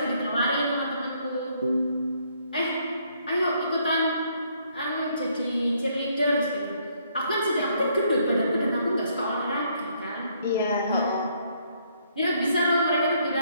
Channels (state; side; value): inverted; both; correlation -0.69